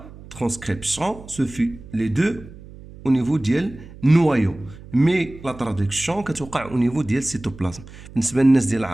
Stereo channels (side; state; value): right; noise; hum, 18 dB below the sound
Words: transcription se fait les deux au niveau ديال noyau, mais la traduction كتوقع au niveau ديال cytoplasme. بالنسبه للناس ديال